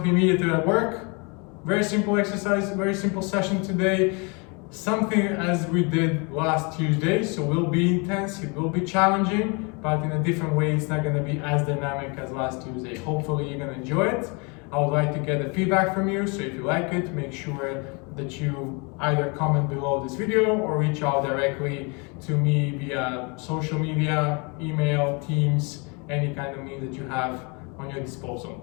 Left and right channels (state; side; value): quieter; right; 31.6 dB